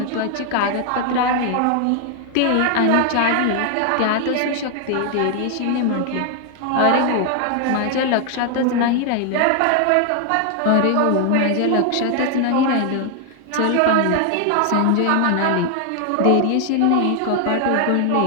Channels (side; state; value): both; different; correlation 0.00